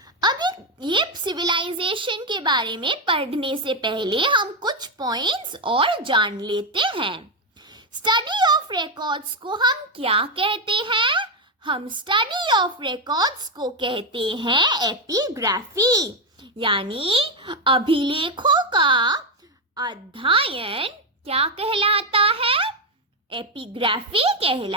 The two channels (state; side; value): normal; both; correlation 0.07